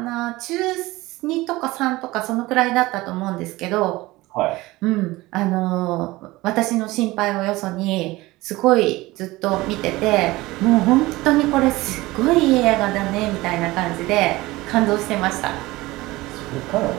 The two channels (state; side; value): quieter; left; 19.7 dB